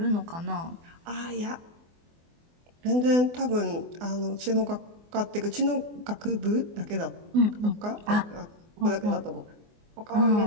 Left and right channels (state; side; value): late; left; 24 ms